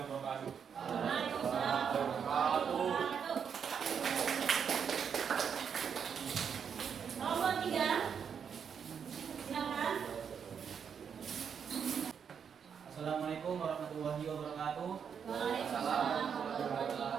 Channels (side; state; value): left; quieter; 7.2 dB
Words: wabarakatuh. Waalaikumsalam warahmatullahi wabarakatuh. Nomor 3. Silakan. Assalamualaikum warahmatullahi wabarakatuh. Waalaikumsalam warahmatullahi